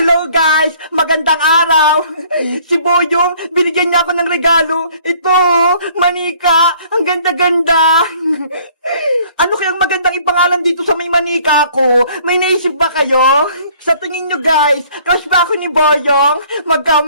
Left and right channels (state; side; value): inverted; both; correlation -0.57